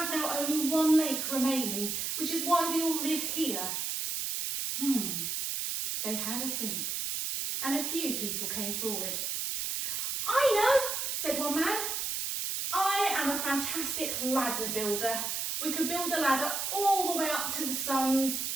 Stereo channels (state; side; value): noise; right; hiss, 1 dB below the sound